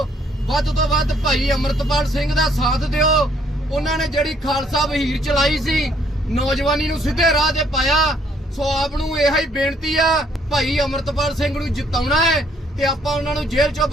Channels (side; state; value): both; normal; correlation 0.66